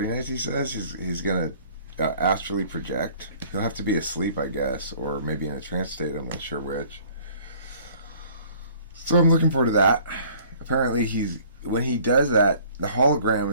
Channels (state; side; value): inverted; both; correlation -0.54